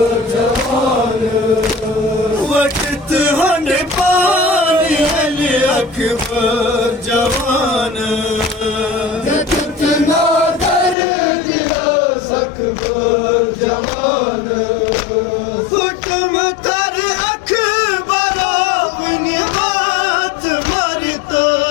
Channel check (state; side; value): drops out; right; at 11.0 s